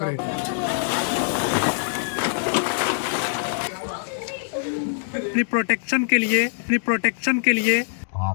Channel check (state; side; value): silent; right; digital silence